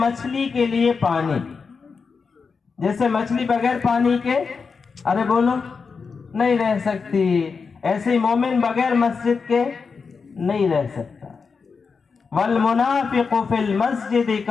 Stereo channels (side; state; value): right; quieter; 5.2 dB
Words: کے لیے پانی، جیسے مچھلی بغیر پانی کے ارے بولو نہیں رہ سکتی، ایسے مومن بغیر مسجد کے نہیں رہ سکتا۔ والمنافق فی المسجد